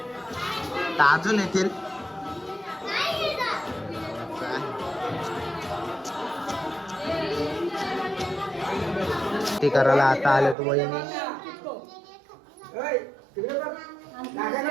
तर अजून येतील. ते करायला आता आले तू वहिनी.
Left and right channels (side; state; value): left; drops out; at 10.6 s